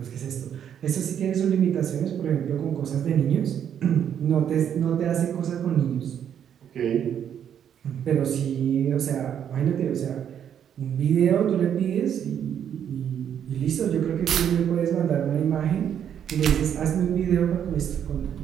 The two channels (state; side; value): quieter; left; 9.0 dB